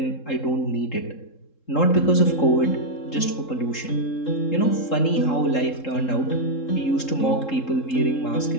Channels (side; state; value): right; late; 3.7 ms